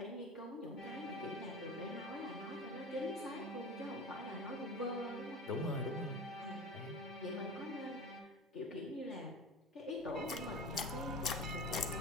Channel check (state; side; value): normal; both; correlation 0.32